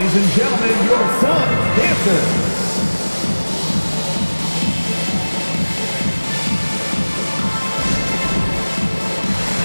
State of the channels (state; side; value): inverted; both; correlation -1.00